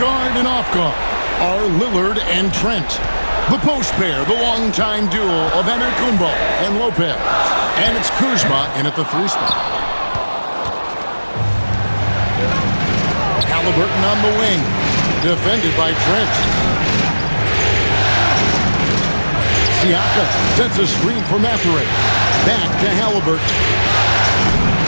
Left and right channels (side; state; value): both; inverted; correlation -1.00